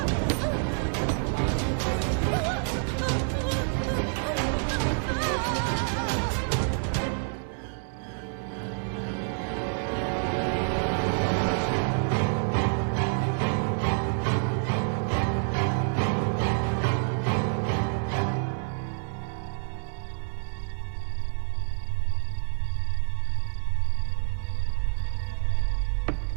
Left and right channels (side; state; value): left; silent; 59 dB below the other